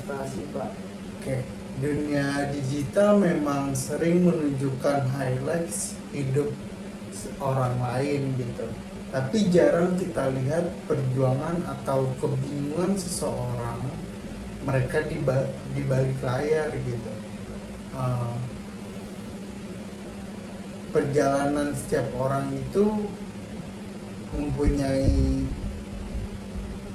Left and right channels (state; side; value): identical; both; correlation 1.00